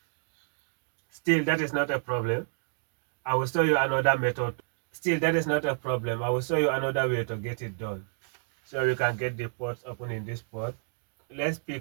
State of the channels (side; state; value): left; silent; 58 dB below the other